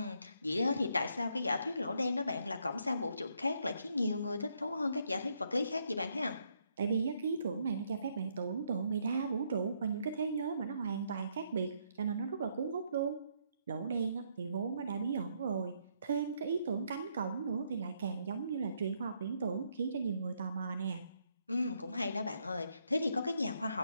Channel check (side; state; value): both; inverted; correlation -0.73